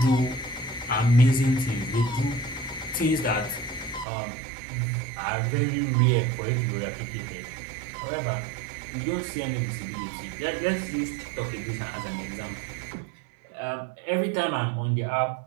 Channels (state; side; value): drops out; left; at 4.0 s